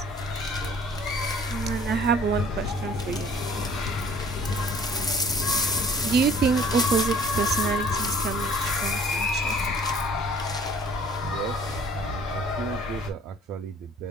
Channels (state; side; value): normal; both; correlation 0.54